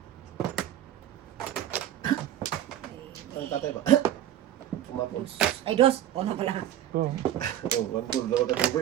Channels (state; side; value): quieter; left; 11.8 dB